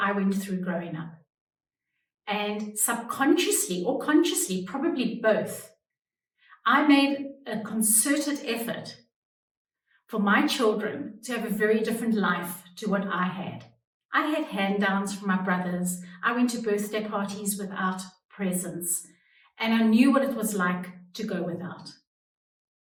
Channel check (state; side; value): identical; both; correlation 1.00